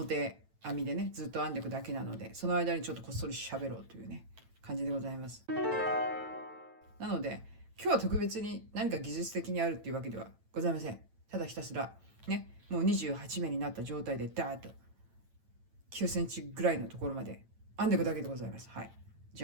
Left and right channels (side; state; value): left; late; 9.0 ms